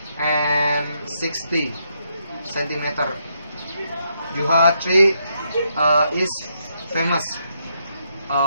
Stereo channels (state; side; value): inverted; both; correlation -0.77